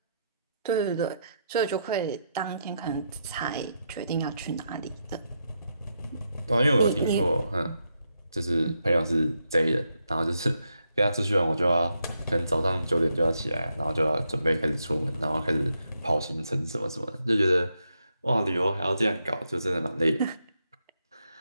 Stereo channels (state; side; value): inverted; both; correlation -0.81